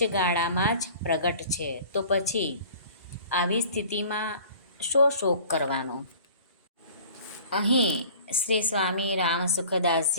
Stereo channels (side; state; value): both; inverted; correlation -0.47